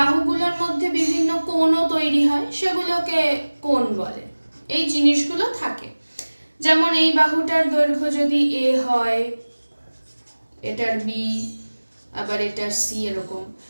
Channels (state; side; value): inverted; both; correlation -1.00